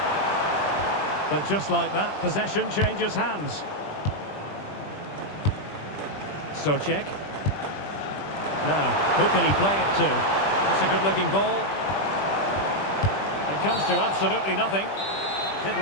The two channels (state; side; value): late; right; 20 ms